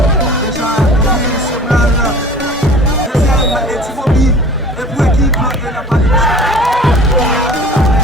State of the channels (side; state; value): both; normal; correlation 0.44